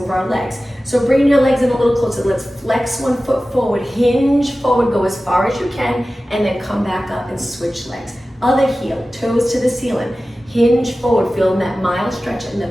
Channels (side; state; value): both; normal; correlation 0.95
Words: our legs. So bring your legs in a little closer. Let's flex 1 foot forward, hinge forward, go as far as you can, and then come back up and switch legs. Other heel, toes to the ceiling. Hinge forward, feel that mild stretch in the